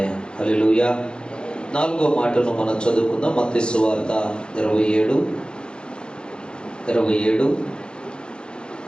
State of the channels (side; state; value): right; late; 0.051 ms